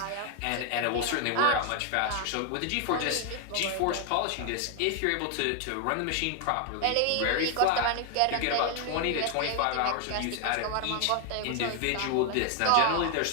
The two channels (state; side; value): different; both; correlation 0.01